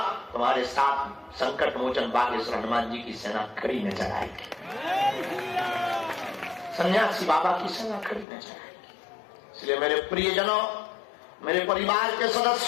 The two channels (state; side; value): drops out; right; at 8.2 s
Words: तुम्हारे साथ संकट मोचन बागेश्वर हनुमान जी की सेना खड़ी नजर आएगी, सन्यासी बाबा की सेना खड़ी नजर आएगी। इसलिए मेरे प्रियजनों, मेरे परिवार के